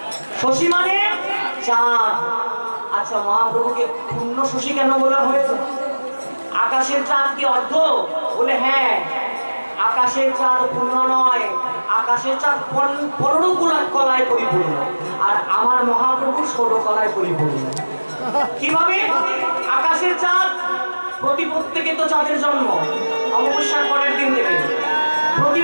শশী মানে চাঁদ। আচ্ছা, মহাপ্রভুকে পূর্ণ শশী কেন বলা হয়েছে? আকাশের চাঁদ কি অর্ধ? বলে হ্যাঁ, আকাশের চাঁদ পূর্ণ নয়, আকাশের চাঁদ 15 কলায় পরিপূর্ণ, আর আমার মহাপ্রভু 16 কলায় পরিপূর্ণ। কিভাবে? আকাশের চাঁদ প্রতিপদ থেকে তো চাঁদের জন্ম, অমাবস্যার পরের দিন থেকে।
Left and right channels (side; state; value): both; inverted; correlation -1.00